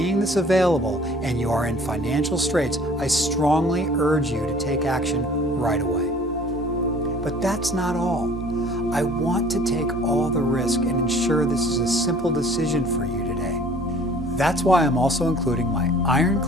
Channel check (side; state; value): both; normal; correlation 0.51